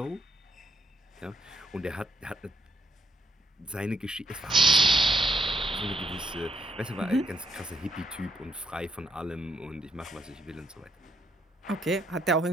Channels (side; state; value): both; normal; correlation 0.75